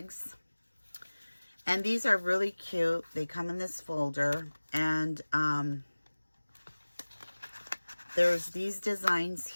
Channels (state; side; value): inverted; both; correlation -1.00